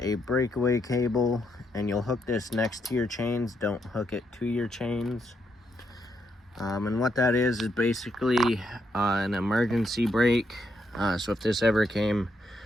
breakaway cable, and you'll hook this next to your chains. Don't hook it to your chains. And what that is basically an emergency brake. So if this ever came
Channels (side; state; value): both; normal; correlation 0.78